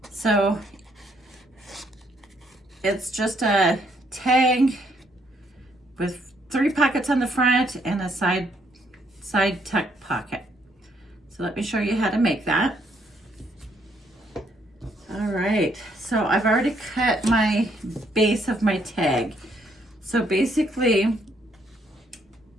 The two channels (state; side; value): normal; both; correlation 0.70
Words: So it's just a tag with 3 pockets on the front and a side tuck pocket. So let me show you how to make that. All right, so I've already cut my base of my tag. So basically,